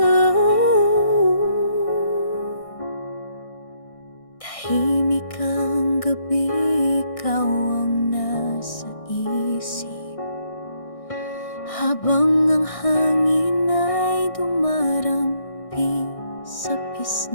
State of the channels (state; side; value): late; right; 1.6 ms